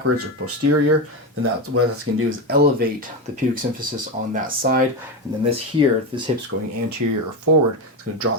or posterior, then that's what that's going to do is elevate the pubic symphysis on that side. And then this here, if this hip's going anterior or forward, it's going to draw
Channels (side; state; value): both; normal; correlation 0.15